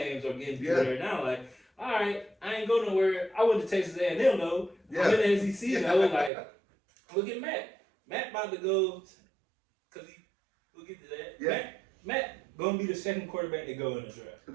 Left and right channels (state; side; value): drops out; left; at 6.3 s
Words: are getting better now. Like, all right, I ain't go nowhere. I went to Texas A&M though. I'm in the SEC though. Like, look at Matt. Matt about to go, cause we'll get to that. Yeah. Matt gonna be the second quarterback to go in the draft. He'll